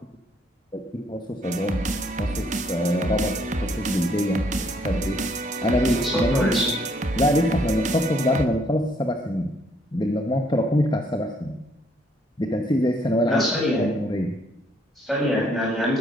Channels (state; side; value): normal; both; correlation 0.67